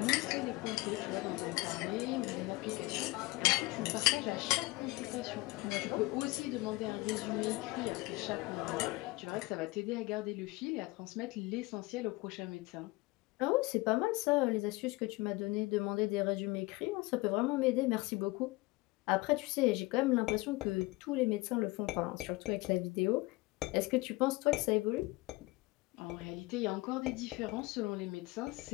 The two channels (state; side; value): quieter; right; 22.0 dB